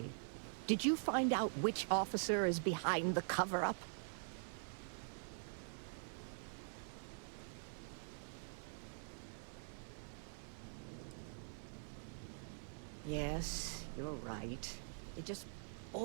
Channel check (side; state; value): left; silent; digital silence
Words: Did you find out which officer is behind the cover-up? Yes, you're right. It just